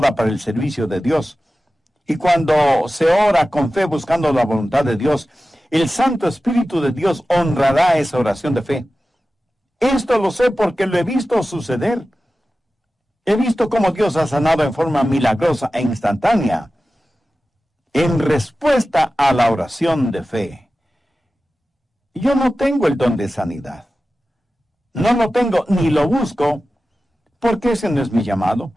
para el servicio de Dios. Y cuando se ora con fe buscando la voluntad de Dios, el Santo Espíritu de Dios honrará esa oración de fe. Esto lo sé porque lo he visto suceder. He visto cómo Dios ha sanado en forma milagrosa e instantánea. en respuesta a la oración de fe. Yo no tengo el don de sanidad. No lo tengo ni lo busco, porque ese no es mi llamado.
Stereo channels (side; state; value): both; normal; correlation 0.95